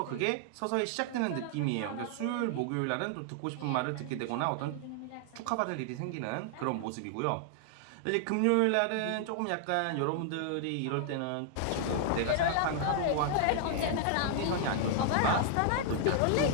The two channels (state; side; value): different; both; correlation 0.00